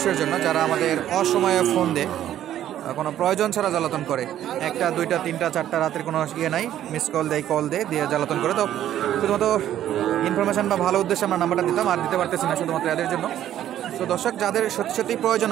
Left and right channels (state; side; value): quieter; left; 11.6 dB